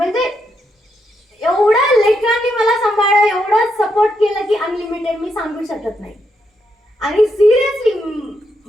एवढं लेकरांनी मला सांभाळलं, एवढं सपोर्ट केलं की अनलिमिटेड मी सांगू शकत नाही. आणि सिरियसली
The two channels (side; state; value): both; normal; correlation 0.80